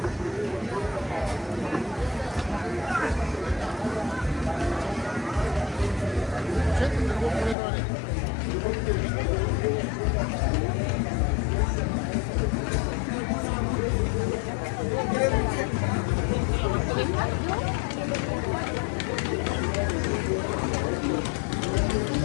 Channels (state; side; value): drops out; right; at 7.6 s